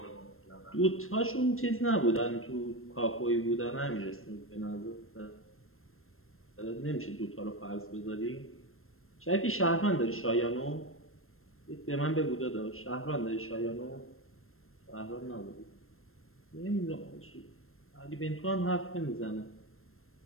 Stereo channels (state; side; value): late; right; 0.62 ms